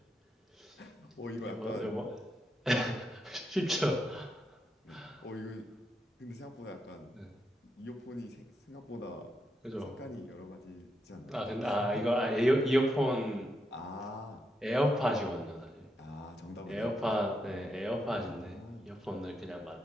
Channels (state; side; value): normal; both; correlation 0.82